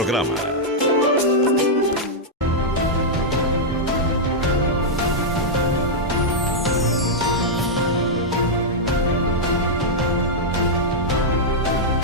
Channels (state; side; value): normal; both; correlation -0.06